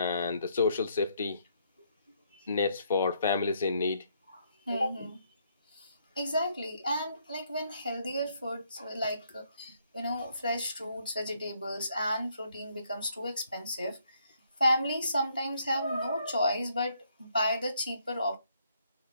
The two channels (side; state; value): both; inverted; correlation -0.71